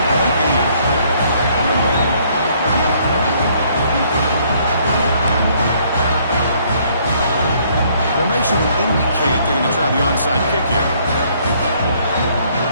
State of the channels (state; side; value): inverted; both; correlation -0.64